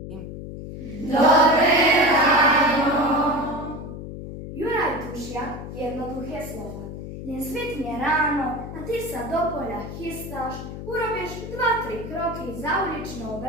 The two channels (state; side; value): noise; left; hum, 9 dB below the sound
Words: Dobré ráno. Juraj tušia jednoduché slova. Nesvitne ráno a ty sa do poľa chystáš, urobíš 2-3 kroky za uličnou